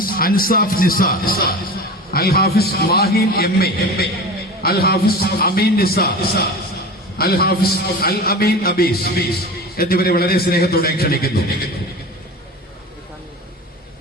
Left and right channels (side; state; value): both; normal; correlation 0.32